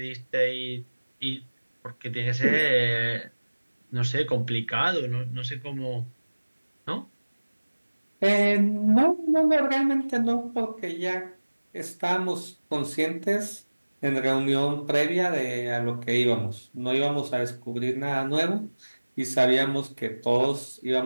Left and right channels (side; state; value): both; inverted; correlation -1.00